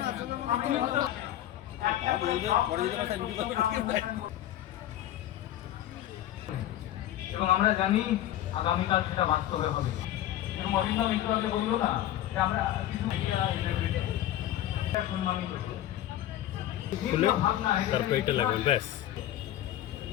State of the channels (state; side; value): quieter; right; 12.8 dB